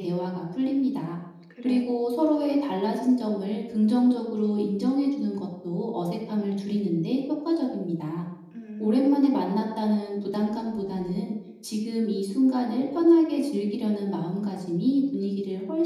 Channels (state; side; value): identical; both; correlation 1.00